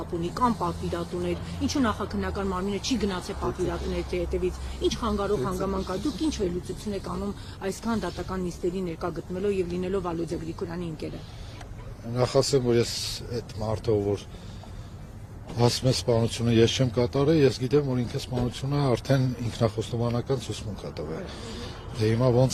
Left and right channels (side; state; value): both; identical; correlation 1.00